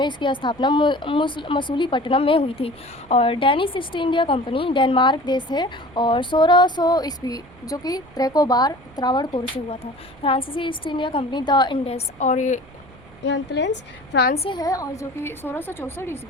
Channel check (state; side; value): noise; right; rumble, 25 dB below the sound